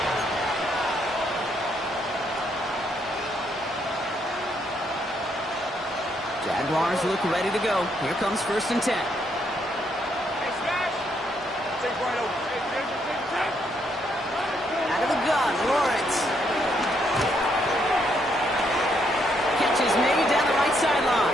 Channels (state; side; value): normal; both; correlation 0.74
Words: Jaguars look ready to go. Here comes first and 10. Out of the gun, Lawrence. Catch is made down the right